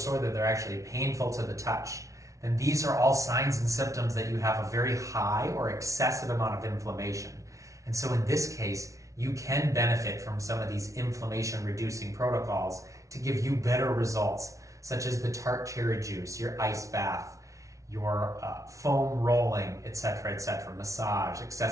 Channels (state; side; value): late; left; 0.15 ms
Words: that they're actually painful to the touch, then these are all signs and symptoms that you have a very high or excessive amount of inflammation. And so in this case, you can benefit from some of these inflammation reducing protocols to give you better results, such as the tart cherry juice, your ice bath, your foam rolling, etc., massage,